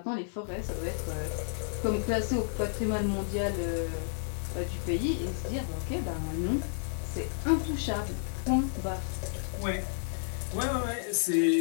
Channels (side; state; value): right; silent; digital silence